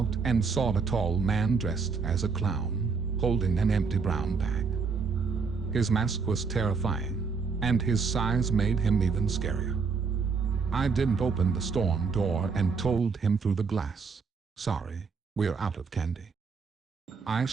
and saw a tall man dressed as a clown, holding an empty brown bag. His mask was terrifying, and his size made him even scarier. I didn't open the storm door and told him through the glass, "Sorry, we're out of candy." I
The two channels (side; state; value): left; quieter; 5.1 dB